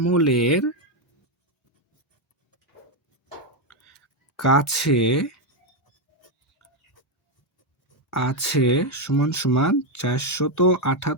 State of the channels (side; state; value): both; normal; correlation 0.05